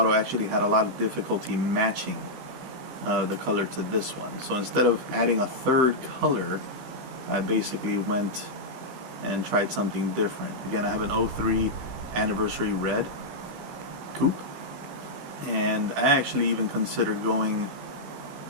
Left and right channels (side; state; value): left; late; 16 ms